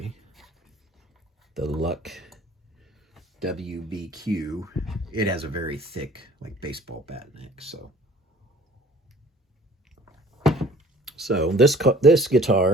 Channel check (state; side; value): normal; both; correlation 0.52